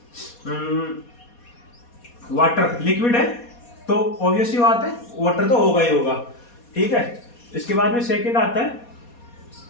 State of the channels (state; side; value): late; right; 4.2 ms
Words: वाटर, लिक्विड है तो ऑब्वियसली बात है वाटर तो होगा ही होगा। ठीक है, इसके बाद में सेकंड आता है